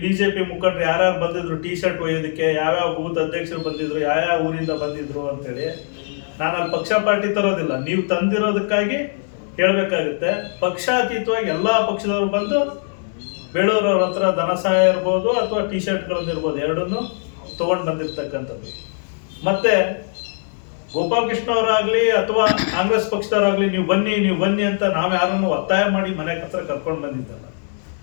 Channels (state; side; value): silent; right; digital silence